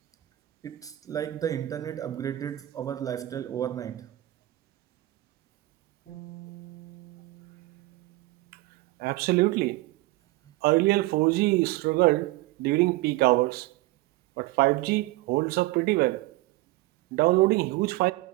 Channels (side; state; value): left; quieter; 18.7 dB